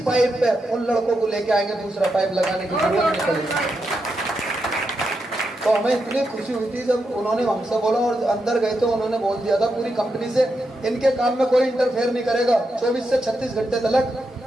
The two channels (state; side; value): normal; both; correlation 0.85